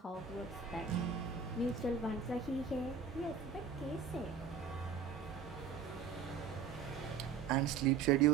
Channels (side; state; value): left; quieter; 6.0 dB